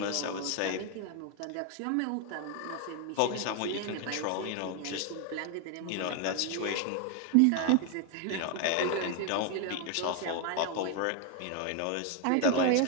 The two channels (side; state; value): both; different; correlation 0.01